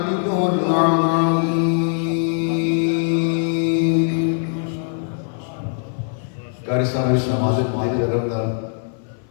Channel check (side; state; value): right; silent; 57 dB below the other